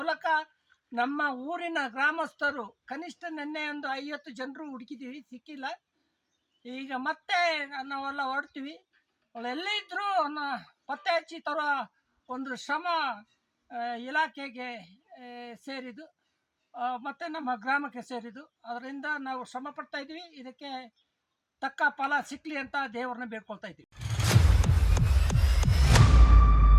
ನಮ್ಮ ಊರಿನ ಗ್ರಾಮಸ್ಥರು ಕನಿಷ್ಠ ನಿನ್ನೆ ಒಂದು 50 ಜನರು ಹುಡುಕಿದ್ದೀವಿ, ಸಿಕ್ಕಿಲ್ಲ. ಈಗ ಮತ್ತೆ ನಾವೆಲ್ಲ ಹೊರಡ್ತೀವಿ. ಅವಳು ಎಲ್ಲೇ ಇದ್ದರೂ ಪತ್ತೆ ಹಚ್ಚಿ ತರೋ ಒಂದು ಶ್ರಮ ಇಲಾಖೆಗೆ ಸೇರಿದ್ದು ಮತ್ತು ನಮ್ಮ ಗ್ರಾಮಕ್ಕೆ ಸೇರಿದ್ದು. ಅದರಿಂದ ನಾವು ಶ್ರಮ ಪಡ್ತಾ ಇದ್ದೀವಿ. ಇದಕ್ಕೆ ತಕ್ಕ ಫಲ ಸಿಕ್ಕಲಿ ಅಂತ ದೇವರನ್ನ ಬೇಡ್ಕೊಳ್ತಾ ಇದ್ದೀವಿ.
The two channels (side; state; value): both; identical; correlation 1.00